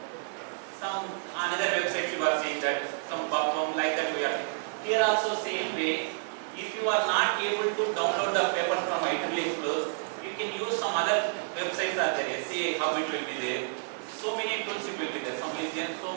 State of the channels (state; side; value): silent; left; 58 dB below the other